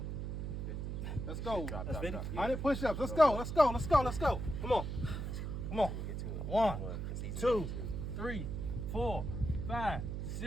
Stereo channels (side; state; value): right; noise; hum, 4 dB below the sound